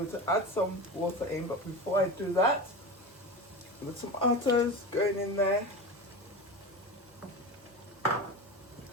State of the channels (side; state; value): both; normal; correlation 0.26